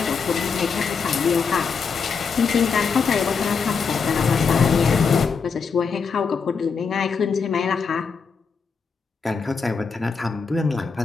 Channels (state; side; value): quieter; right; 5.5 dB